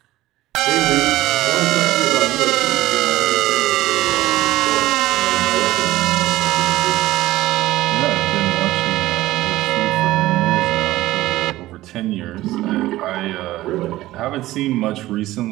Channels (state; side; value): quieter; left; 16.4 dB